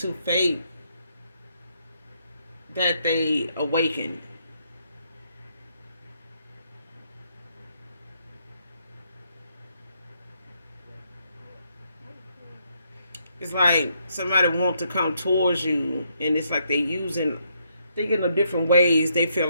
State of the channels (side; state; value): both; inverted; correlation -0.75